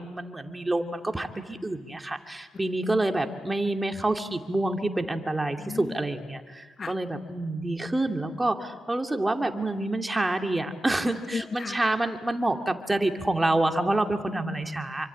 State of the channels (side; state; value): both; normal; correlation 0.94